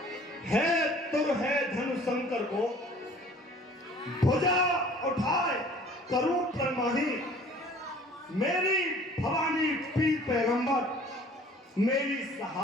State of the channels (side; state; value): both; normal; correlation 0.50